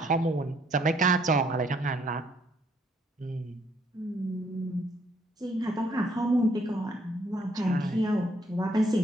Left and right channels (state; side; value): normal; both; correlation 0.68